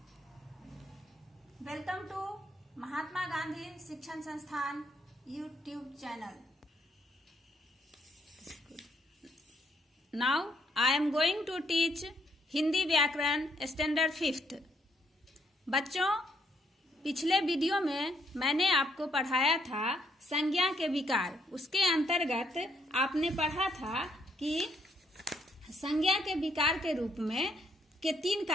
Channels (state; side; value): normal; both; correlation 0.72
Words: Welcome to Mahatma Gandhi Shikshan Sansthan YouTube channel. Now I am going to teach Hindi व्याकरण standard 5th। बच्चों, पिछले video में मैंने आपको पढ़ाया था संज्ञा के विकार। उसके अंतर्गत आपने पढ़ा था कि संज्ञा के विकार के रूप में के 3